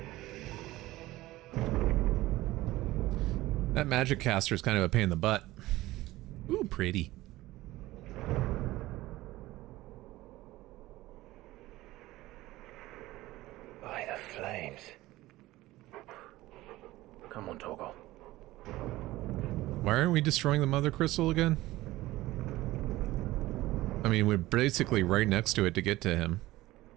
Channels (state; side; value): quieter; left; 17.6 dB